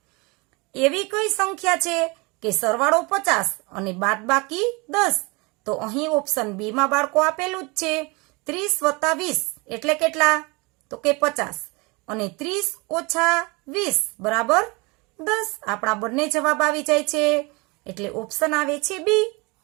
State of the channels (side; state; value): left; quieter; 27.3 dB